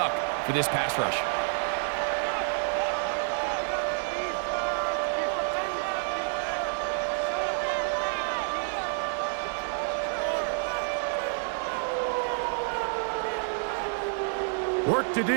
for this pass rush. Work to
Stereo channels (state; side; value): silent; left; digital silence